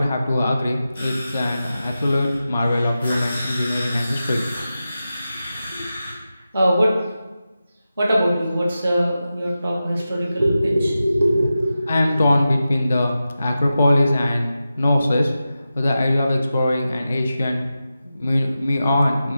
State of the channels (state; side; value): inverted; both; correlation -0.92